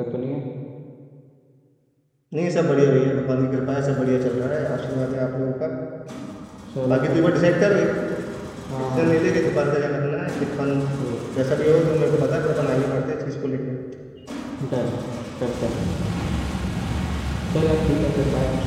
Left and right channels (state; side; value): identical; both; correlation 1.00